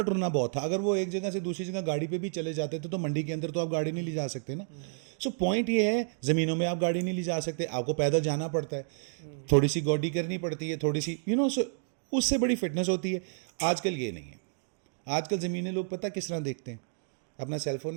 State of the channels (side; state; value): left; silent; digital silence